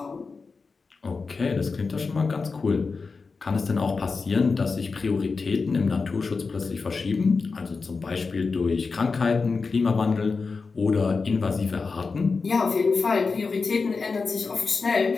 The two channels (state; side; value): quieter; right; 4.5 dB